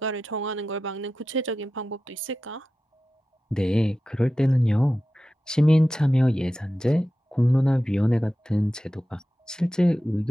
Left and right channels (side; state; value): both; normal; correlation 0.93